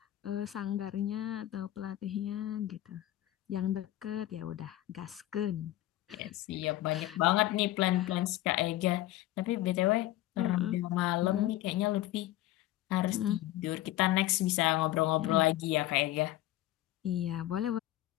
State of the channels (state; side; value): quieter; right; 15.2 dB